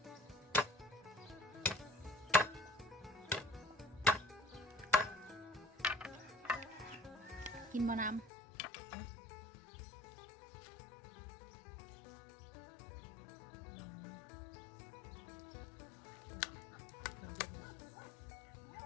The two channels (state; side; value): drops out; right; at 8.3 s